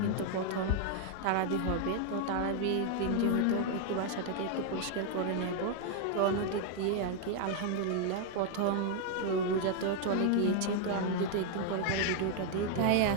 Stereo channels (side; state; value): both; different; correlation 0.00